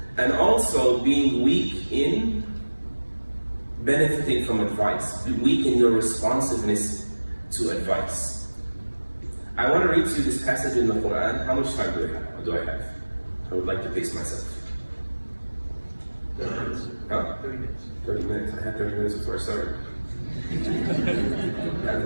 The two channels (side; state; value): both; inverted; correlation -1.00